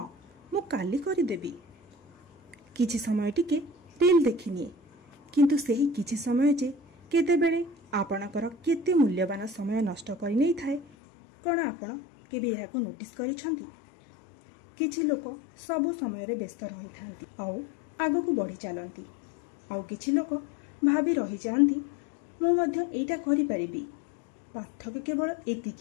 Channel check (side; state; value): right; drops out; at 10.9 s